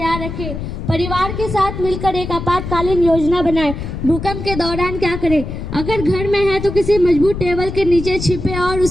रखें। परिवार के साथ मिलकर एक आपातकालीन योजना बनाएं। भूकंप के दौरान क्या करें? अगर घर में है तो किसी मजबूत टेबल के नीचे छिपे और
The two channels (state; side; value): noise; left; rumble, 7 dB below the sound